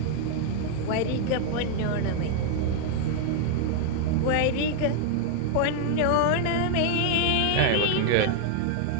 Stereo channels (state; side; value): different; both; correlation 0.00